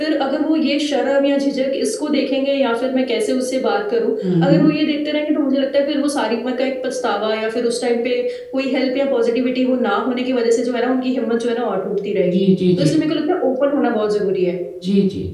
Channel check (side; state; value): both; identical; correlation 1.00